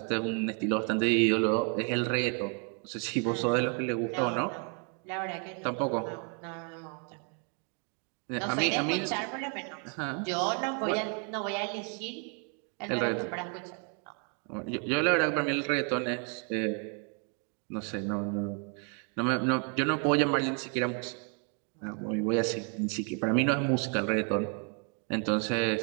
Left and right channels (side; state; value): left; quieter; 39.3 dB